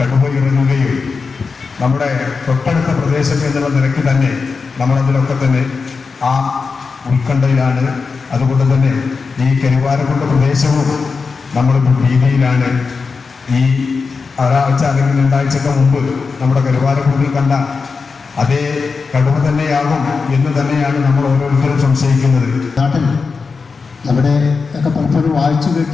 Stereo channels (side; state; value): right; quieter; 4.8 dB